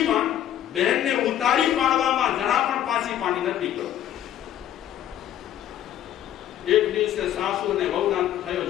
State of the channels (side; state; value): right; quieter; 11.4 dB